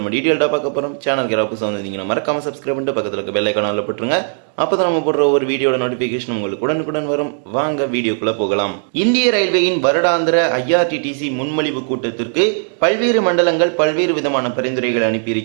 டீட்டெயில்டாக பார்க்க போகிறோம். சேனலுக்கு யாராவது புதுசாக வந்தீங்கன்னா மறக்காம சப்ஸ்கிரைப் பண்ணிட்டு பக்கத்தில் இருக்க பெல் ஐகானில் போட்டுருங்க. அப்போ தான் நம்ம போடுற ஒரு வீடியோட நோட்டிஃபிகேஷன் உங்களுக்கு உடனுக்குடன் வரும். வாங்க வீடியோக்குள்ள போகலாம். இந்திய ரயில்வேயின் வருடாந்திர IRTTC முன்மொழிவு கூட்டத்திற்கு பல்வேறு மண்டலங்கள் பல்வேறு விதமான பரிந்துரைகளை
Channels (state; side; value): silent; left; digital silence